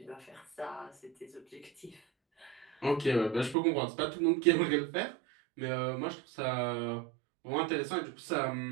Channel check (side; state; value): left; drops out; at 3.6 s